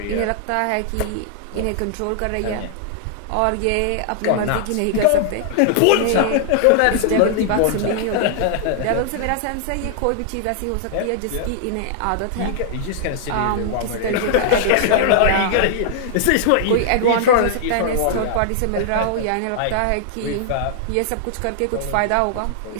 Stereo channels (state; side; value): different; both; correlation -0.01